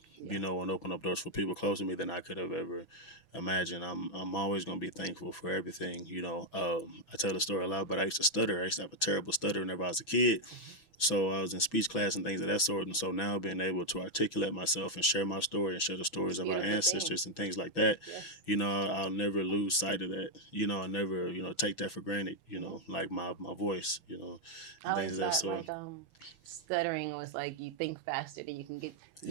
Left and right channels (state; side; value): late; right; 6.1 ms